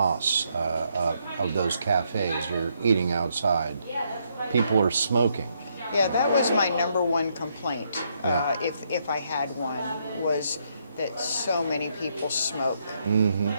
of those cafes, you're eating outside. People are smoking. Yeah, that was my number one complaint, Yeah. if I had one, was that so many people smoke, Mm-hmm.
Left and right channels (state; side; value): inverted; both; correlation -0.75